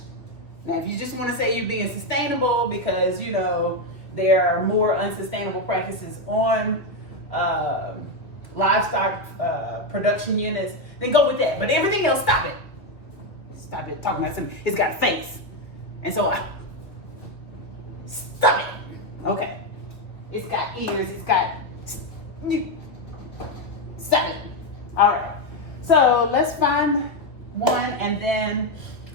Now, if you just want to say you're being sustainable because, you know, there are more unsustainable practices on livestock production units, then go with that. But everything else, stop it. Stop it talking about something. It's got a face. And so stop it. Okay. It's got ears. It's got... Stop it. All right. So let's find one, and then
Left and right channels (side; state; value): right; late; 2.1 ms